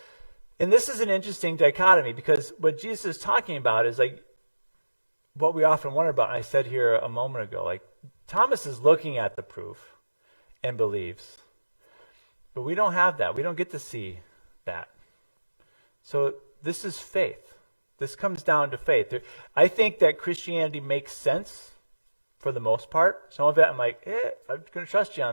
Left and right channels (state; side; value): inverted; both; correlation -1.00